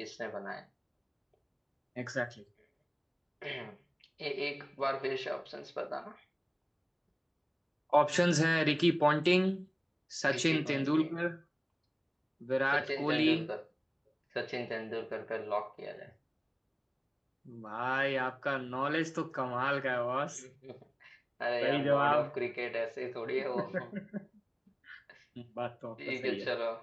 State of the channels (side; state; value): both; identical; correlation 1.00